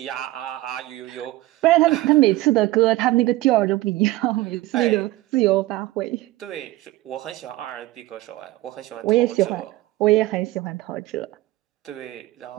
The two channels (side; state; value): left; quieter; 17.6 dB